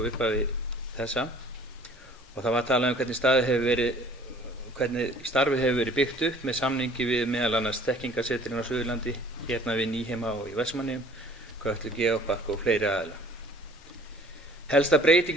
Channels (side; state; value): both; normal; correlation 0.52